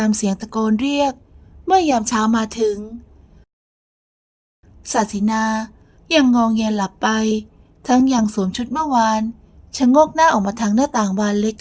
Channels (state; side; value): identical; both; correlation 1.00